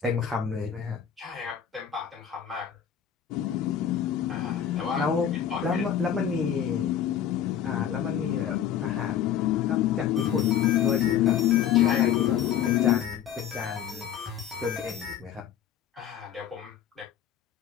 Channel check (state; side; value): quieter; right; 9.4 dB